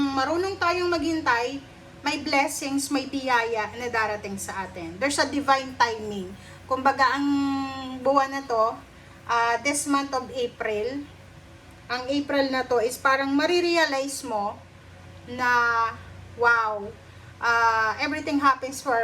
marunong tayong maghintay, may blessings, may biyaya na darating sa atin. There's a divine timing. Kumbaga, ang buwan na to, this month of April, ang April na to is parang marirealize mo na, wow, everything happens for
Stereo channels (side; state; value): both; identical; correlation 1.00